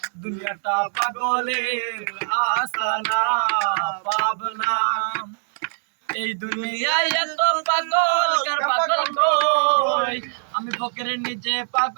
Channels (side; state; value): left; silent; digital silence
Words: দুনিয়াটা পাগলের আস্তানা। পাবনা এই দুনিয়ায় এত পাগল কার পাগল কই, আমি ফকিরের নিজে